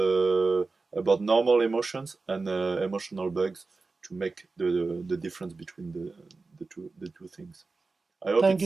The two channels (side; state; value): left; quieter; 3.9 dB